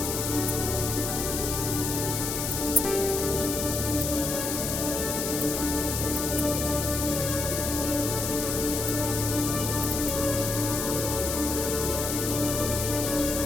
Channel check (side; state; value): left; noise; hiss, 2 dB below the sound